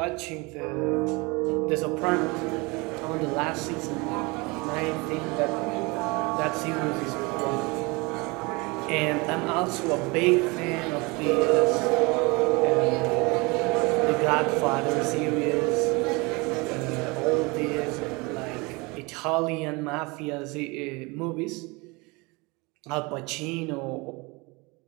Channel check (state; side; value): quieter; left; 26.4 dB